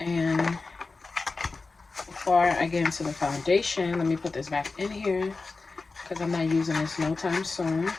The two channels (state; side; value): quieter; right; 3.9 dB